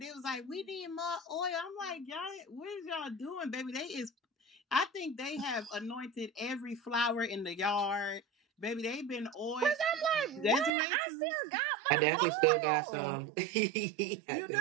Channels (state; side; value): drops out; left; at 10.7 s